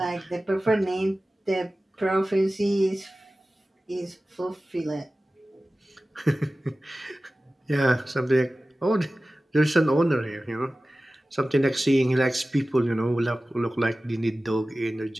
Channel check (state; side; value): normal; both; correlation 0.96